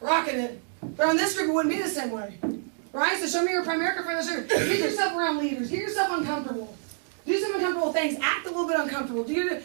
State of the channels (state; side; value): silent; left; digital silence